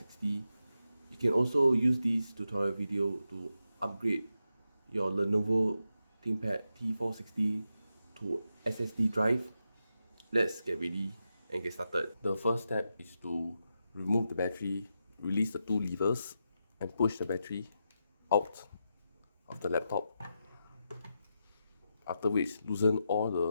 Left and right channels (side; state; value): both; inverted; correlation -0.87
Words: You can also use this tutorial video to upgrade your Lenovo Thinkpad T460 to SSD drive. Let's get ready and get started. The first step is to remove the battery, release the two levers, and push the battery out of the laptop. After which, loosen all